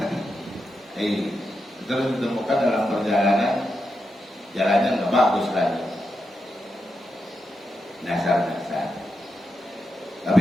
Terus ditemukan dalam perjalanan jalannya nggak bagus lagi, nasar-nasar. Tapi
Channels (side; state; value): both; normal; correlation 0.86